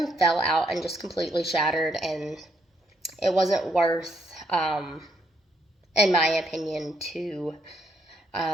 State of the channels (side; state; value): both; normal; correlation 0.74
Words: fell out and just completely shattered, and it wasn't worth, in my opinion, to